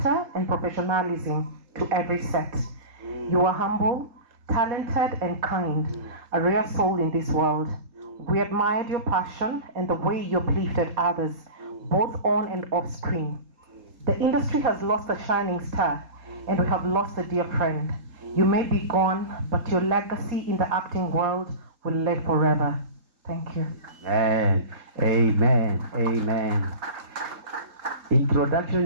and professionalism to every set. You were humble, talented, and kind, a rare soul in this world. We admired your passion and the way you uplifted others, both on and off screen. The industry has lost a shining star, and we have lost a dear friend. You may be gone, but your legacy in the acting world will live forever. Thank you. Amen. Amen. Amen.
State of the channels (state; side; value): late; left; 3.8 ms